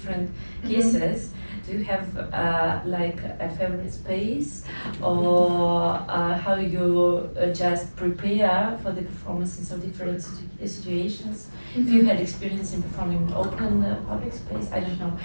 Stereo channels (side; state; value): both; inverted; correlation -1.00